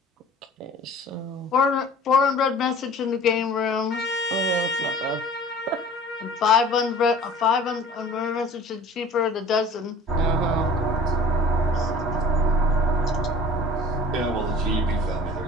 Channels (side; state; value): both; normal; correlation 0.45